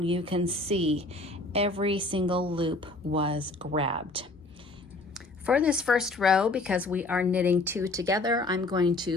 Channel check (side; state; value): right; quieter; 3.0 dB